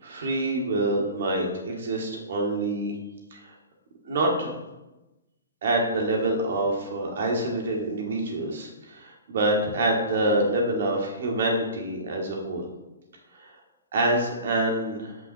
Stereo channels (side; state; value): both; inverted; correlation -0.39